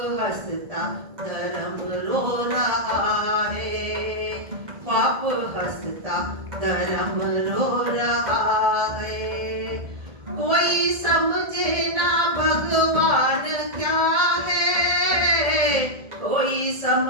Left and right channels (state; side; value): late; left; 1.7 ms